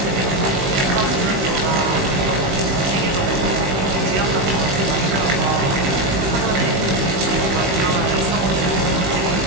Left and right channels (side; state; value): left; late; 16 ms